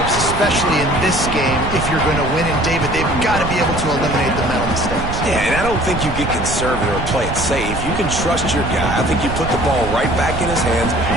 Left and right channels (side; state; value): right; noise; rumble, 6 dB below the sound